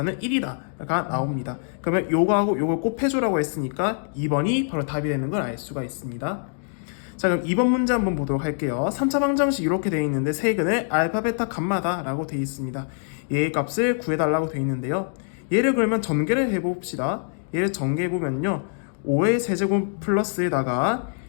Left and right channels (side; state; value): right; silent; digital silence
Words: 1이다가 나옵니다. 그러면 요거하고 요걸 곱해주라고 했으니까 2번이 바로 답이 되는 걸 알 수가 있습니다. 자, 그럼 2번 문제 한번 보도록 할게요. 3차 방정식 이렇게 되어 있는데 세근을 알파 베타 감마다 라고 되어 있습니다. 얘의 값을 구해달라고 되어 있는데요. 얘를 그러면 전개를 해봅시다. 얘를 전개해보면요, 5의 세제곱 플러스에다가